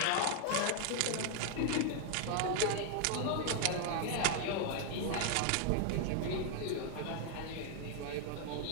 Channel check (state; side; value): different; both; correlation 0.00